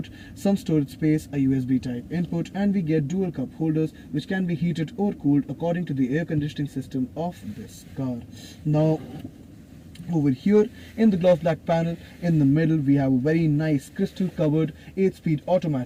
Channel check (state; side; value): identical; both; correlation 1.00